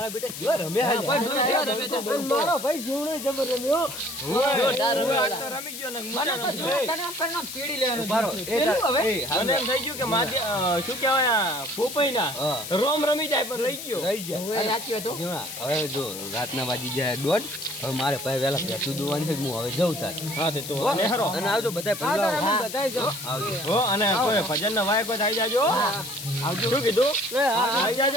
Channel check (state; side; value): noise; left; hiss, 9 dB below the sound